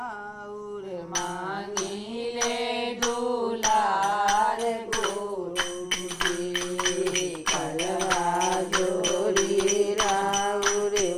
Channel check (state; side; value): identical; both; correlation 1.00